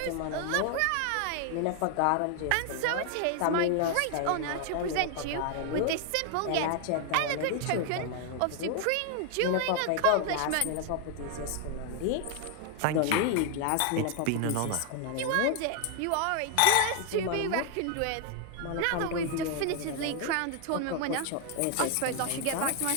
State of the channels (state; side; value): different; both; correlation 0.00